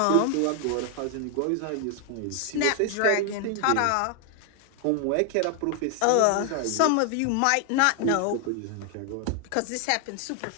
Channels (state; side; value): different; both; correlation 0.00